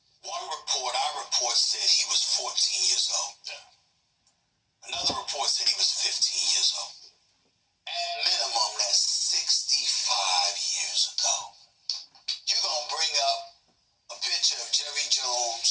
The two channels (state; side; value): identical; both; correlation 1.00